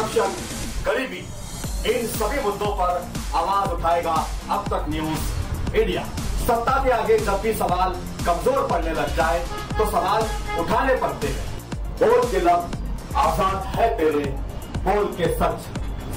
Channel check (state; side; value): identical; both; correlation 1.00